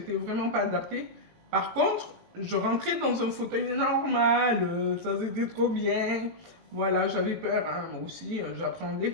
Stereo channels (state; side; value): late; left; 18 ms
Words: vraiment pas adapté. Par contre, je rentrais dans un fauteuil normal, ça c'était trop bien. Voilà, j'avais peur, hein, moi aussi, j'appréhendais